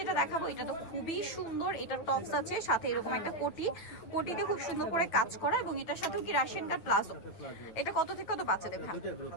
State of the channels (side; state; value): right; late; 9.1 ms